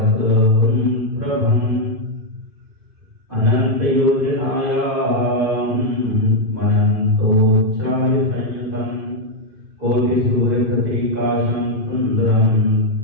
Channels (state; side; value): late; left; 2.5 ms